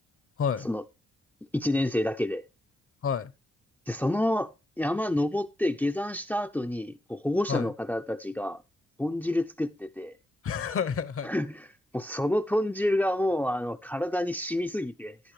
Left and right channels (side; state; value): both; normal; correlation 0.84